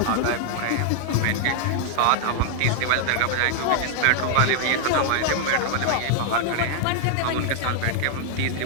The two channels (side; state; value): both; different; correlation 0.00